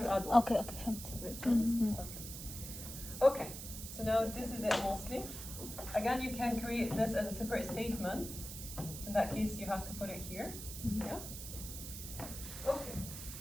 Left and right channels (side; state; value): right; noise; hiss, 9 dB below the sound